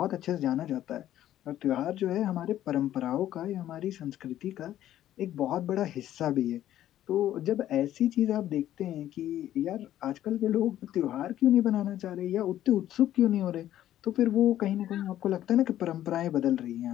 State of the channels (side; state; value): right; quieter; 12.5 dB